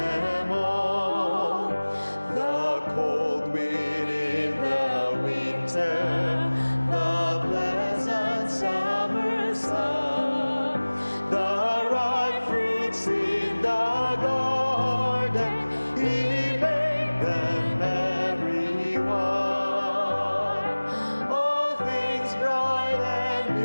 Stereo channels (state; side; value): inverted; both; correlation -1.00